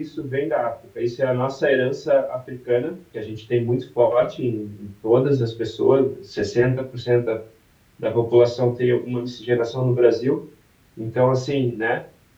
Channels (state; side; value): identical; both; correlation 1.00